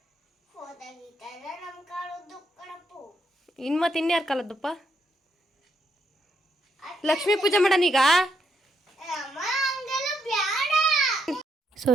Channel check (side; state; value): both; normal; correlation 0.77